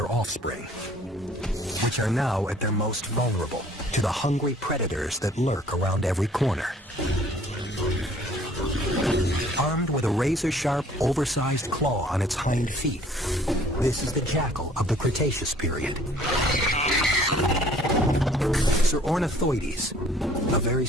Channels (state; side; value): normal; both; correlation 0.56